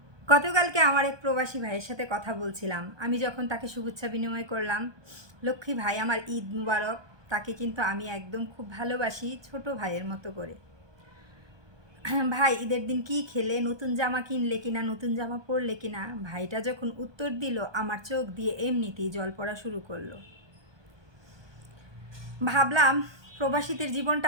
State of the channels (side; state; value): left; late; 1.2 ms